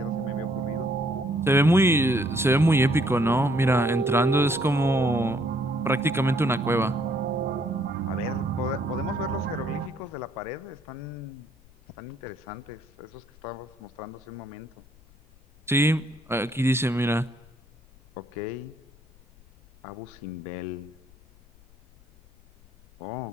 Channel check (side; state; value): left; noise; rumble, 27 dB below the sound